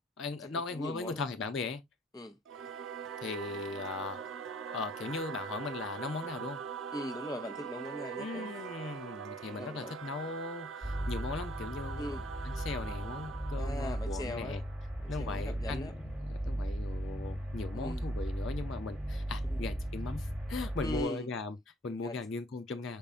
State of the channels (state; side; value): normal; both; correlation 0.61